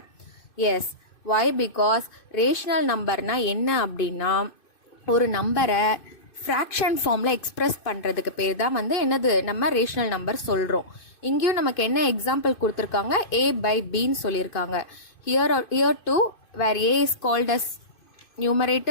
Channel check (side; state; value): right; late; 2.6 ms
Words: Yes, why? Because ரேஷனல் நம்பர்னா என்ன அப்படின்னா ஒரு நம்பரை ஃப்ராக்ஷன் ஃபார்மில் எக்ஸ்பிரஸ் பண்ணுறதுக்கு பேர் தான் வந்து என்னது நம்ம ரேஷனல் நம்பர் சொல்கிறோம். இங்கேயும் நமக்கு என்ன எக்ஸாம்பிள் கொடுத்துருக்காங்க? a by bன்னு சொல்லியிருக்காங்க. here too where a is called as